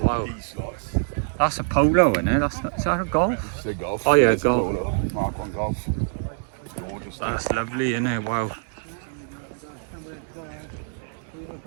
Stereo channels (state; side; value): silent; left; digital silence